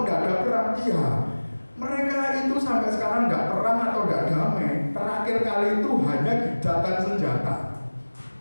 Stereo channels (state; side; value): inverted; both; correlation -1.00